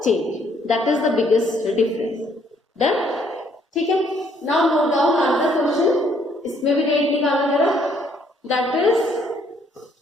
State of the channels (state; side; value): normal; both; correlation 0.66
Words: change. That is the biggest difference. Done, ठीक है. Now note down answer question. इसमें भी रेट निकालना जरा. That is